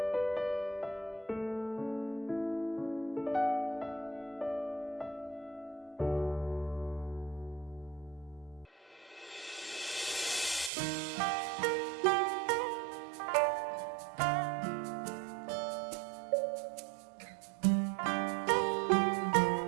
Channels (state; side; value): drops out; left; at 10.7 s